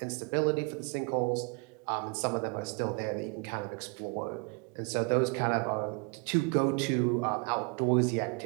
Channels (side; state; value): left; quieter; 32.5 dB